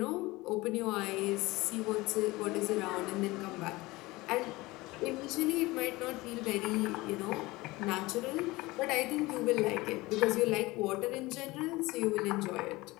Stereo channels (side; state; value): right; quieter; 21.0 dB